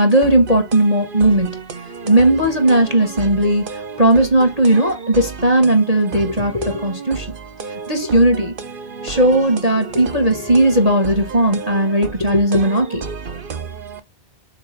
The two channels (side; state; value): left; late; 1.8 ms